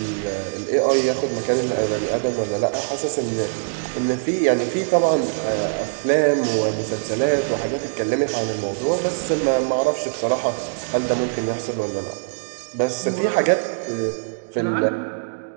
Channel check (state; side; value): silent; left; digital silence